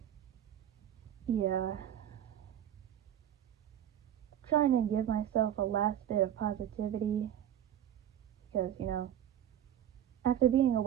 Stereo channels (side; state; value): left; quieter; 10.8 dB